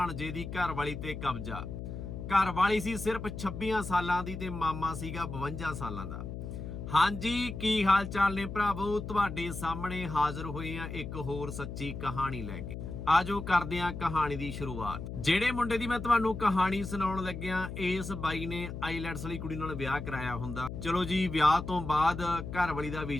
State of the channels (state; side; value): noise; left; hum, 7 dB below the sound